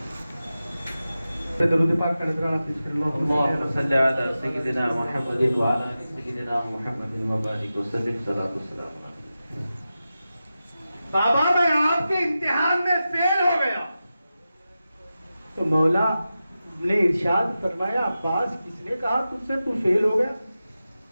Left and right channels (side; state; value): both; inverted; correlation -0.93